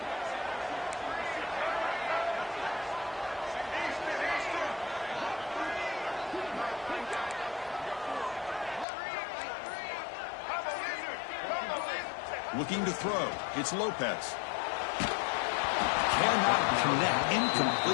Looking to throw. It's Lopez. Cannot connect.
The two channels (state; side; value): drops out; right; at 8.8 s